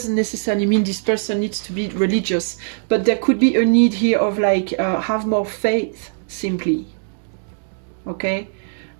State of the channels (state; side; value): silent; left; digital silence